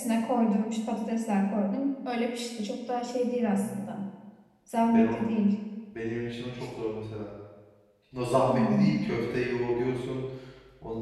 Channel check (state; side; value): identical; both; correlation 1.00